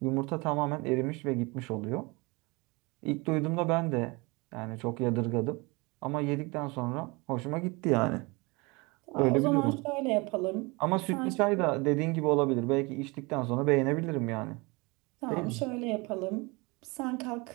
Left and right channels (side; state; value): left; quieter; 26.3 dB